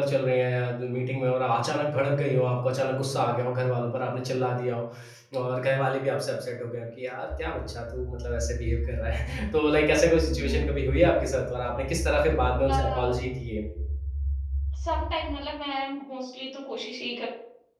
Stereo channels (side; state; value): both; identical; correlation 1.00